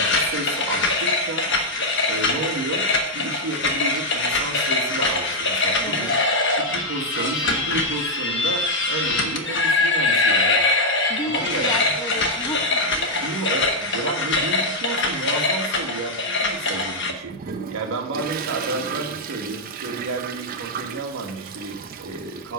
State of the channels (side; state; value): both; normal; correlation -0.01